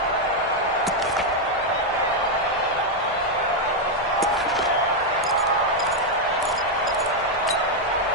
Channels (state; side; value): normal; both; correlation 0.01